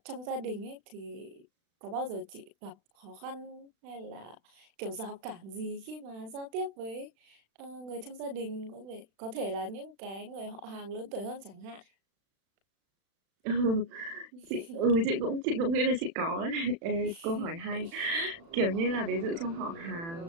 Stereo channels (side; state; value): left; late; 36 ms